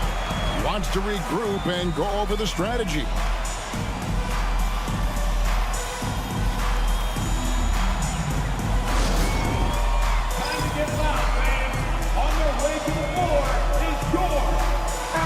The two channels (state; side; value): identical; both; correlation 1.00